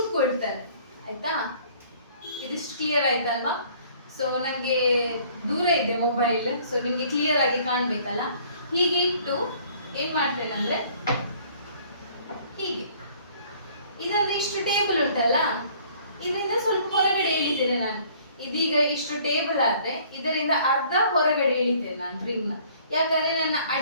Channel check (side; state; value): both; inverted; correlation -0.56